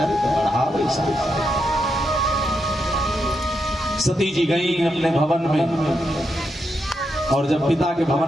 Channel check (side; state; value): both; normal; correlation 0.83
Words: बढ़ावे सती जी गई अपने भवन में, और जब पिता के